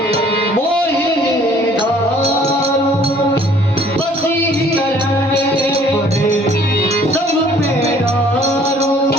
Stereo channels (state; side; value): normal; both; correlation 0.57